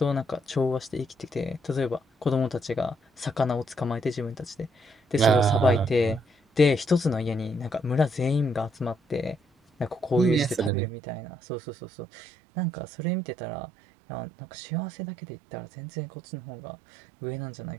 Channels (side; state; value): left; drops out; at 10.7 s